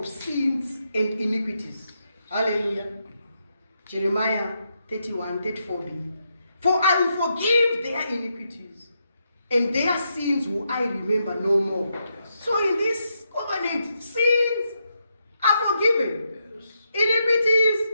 sins and iniquities. Hallelujah. Jeremiah 31:34b. For I will forgive their iniquities, and their sins will I remember no more. So in this covenant, sins are forgiven. Iniquities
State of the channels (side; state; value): both; inverted; correlation -0.81